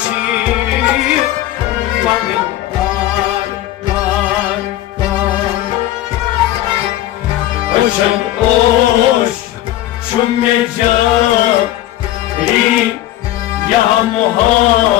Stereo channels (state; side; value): quieter; right; 14.2 dB